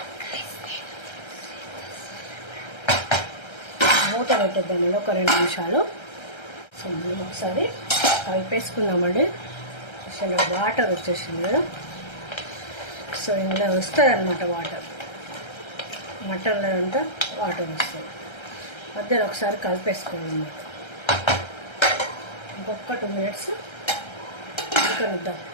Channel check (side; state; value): right; late; 1.3 ms